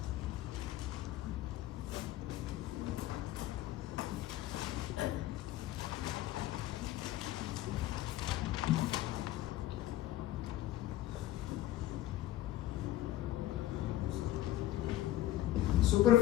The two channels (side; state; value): right; quieter; 14.3 dB